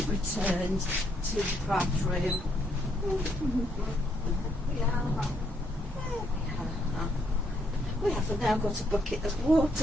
returned to the craft room. We have now got a bucket of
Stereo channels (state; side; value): normal; both; correlation 0.73